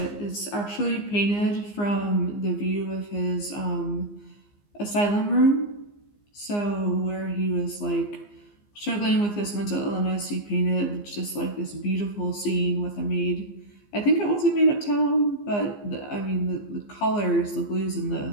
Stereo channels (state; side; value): late; right; 15 ms